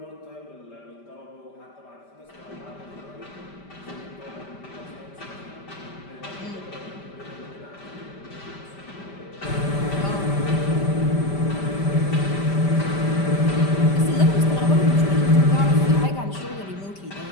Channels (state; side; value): late; right; 5.1 ms